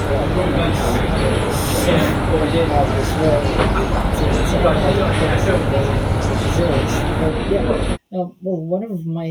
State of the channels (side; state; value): both; identical; correlation 1.00